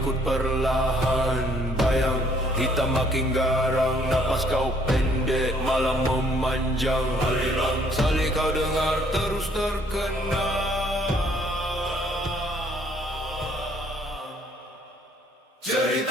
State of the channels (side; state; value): both; normal; correlation 0.63